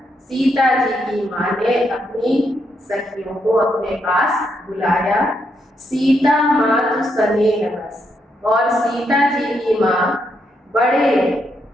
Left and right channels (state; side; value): normal; both; correlation 0.78